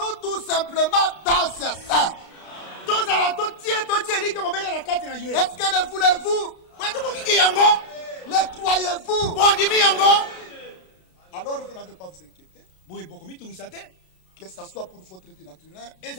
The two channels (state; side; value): late; right; 32 ms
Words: tout simplement dans ses seins. Est-ce que le voulez-vous? Le croyez-vous? Alors vous n'avez pas à vous inquiéter. Que ce soit pour votre vie naturelle, que